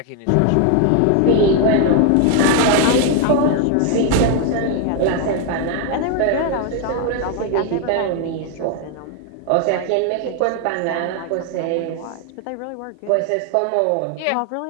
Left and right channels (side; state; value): both; different; correlation 0.01